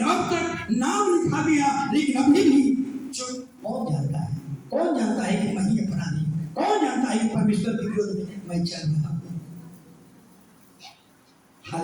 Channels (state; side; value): identical; both; correlation 1.00